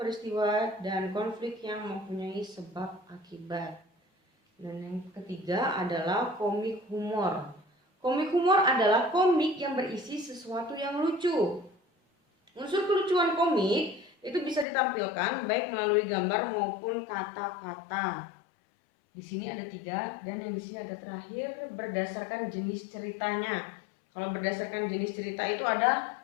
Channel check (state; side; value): drops out; right; at 14.7 s